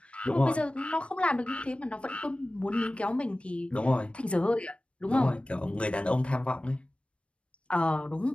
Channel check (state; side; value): late; right; 0.060 ms